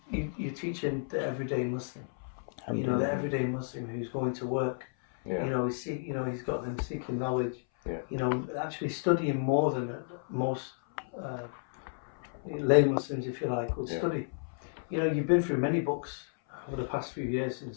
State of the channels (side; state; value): right; silent; 56 dB below the other